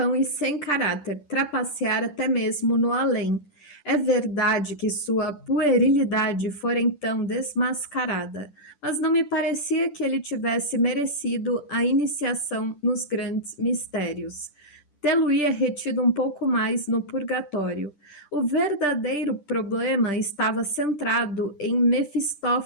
e sem caráter, trapacear até mesmo no além. É verdade que sua puerilidade fora então desmascarada, mas não me parecia que ele tivesse merecido a iniciação nos grandes mistérios. Tê-lo-ia retido um pouco mais no purgatório. O verdadeiro problema estava centrado em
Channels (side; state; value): right; late; 10 ms